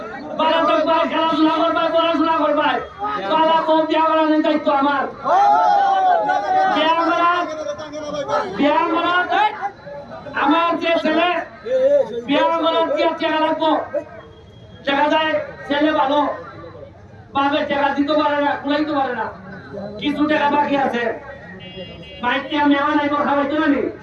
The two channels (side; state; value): both; identical; correlation 1.00